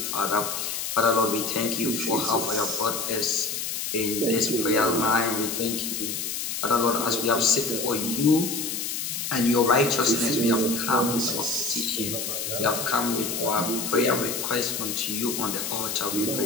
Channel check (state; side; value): noise; left; hiss, 3 dB below the sound